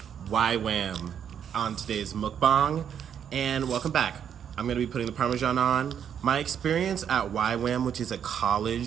YWAM on today's mukbang, and welcome back. I'm gonna be putting the Parmesan on. My experience at YWAM, which is a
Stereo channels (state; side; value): quieter; left; 8.5 dB